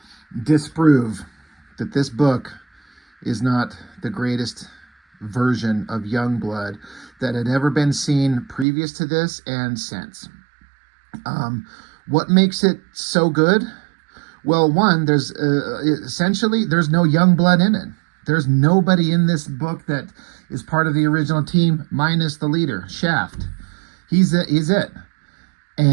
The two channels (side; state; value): left; drops out; at 8.7 s